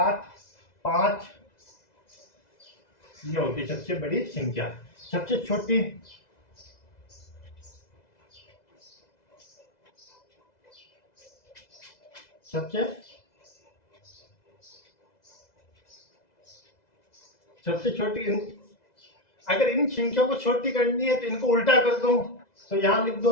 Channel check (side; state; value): right; late; 2.0 ms